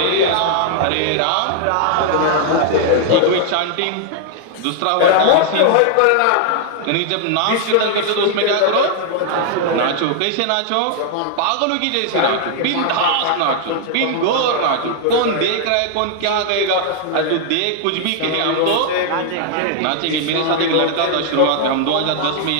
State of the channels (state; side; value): different; both; correlation 0.00